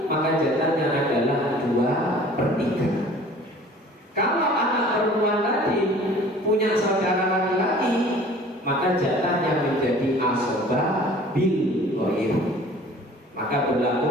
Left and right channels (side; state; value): both; normal; correlation 0.48